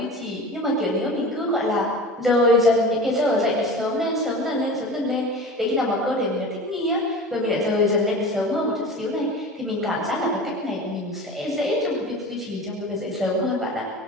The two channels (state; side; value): normal; both; correlation 0.35